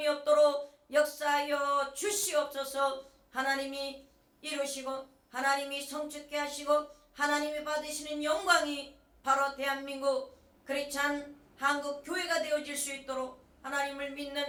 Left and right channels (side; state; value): both; identical; correlation 1.00